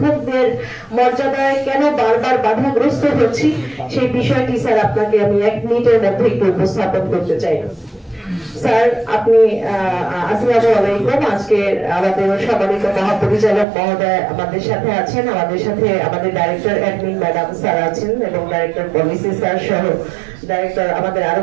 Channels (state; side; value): drops out; left; at 13.7 s